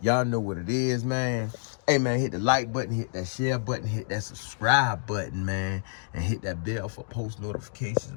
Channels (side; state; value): right; silent; digital silence